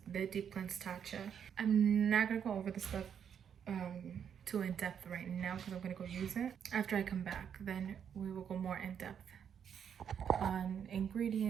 the Deep Cleanse Tatcha. I'm not gonna go over the stuff too in depth right now, because I'm gonna go use it. After I come back, then we will go more in depth on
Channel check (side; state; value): left; quieter; 8.1 dB